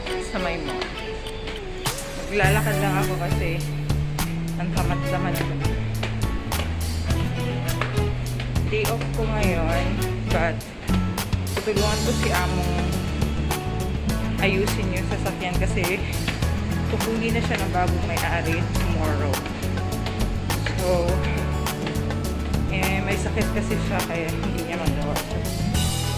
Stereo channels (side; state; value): both; identical; correlation 1.00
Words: mall. Maglalakad lang ako kasi ang tamad-tamad ko. Day off ko ngayon, but tutulungan ko si Among ayusin yung sasakyan kasi kukunin na siya ng bagong may-ari tomorrow. So, may sakit kasi siya kaya hindi niya magawa.